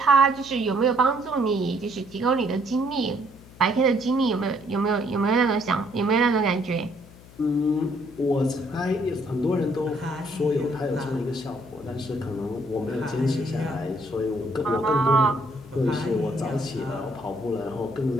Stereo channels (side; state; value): left; noise; hum, 21 dB below the sound